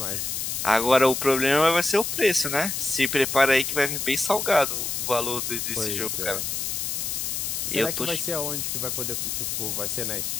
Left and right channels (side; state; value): left; noise; hiss, 2 dB below the sound